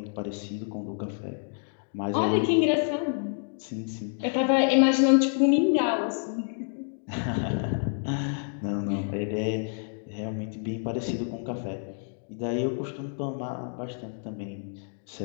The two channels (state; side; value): silent; right; 59 dB below the other